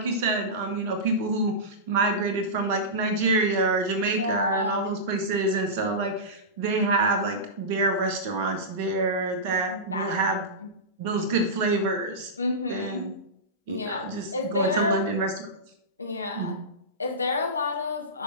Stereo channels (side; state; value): both; normal; correlation -0.17